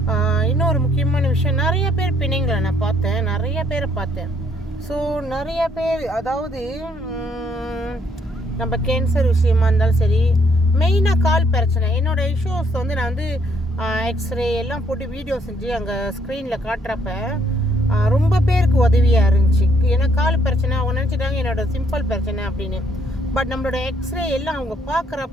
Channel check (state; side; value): normal; both; correlation 0.69